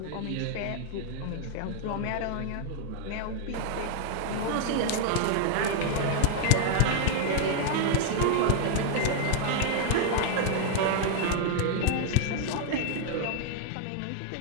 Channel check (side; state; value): both; different; correlation 0.00